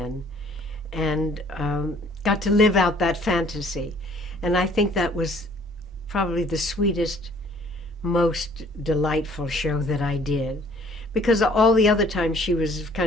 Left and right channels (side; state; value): both; normal; correlation 0.57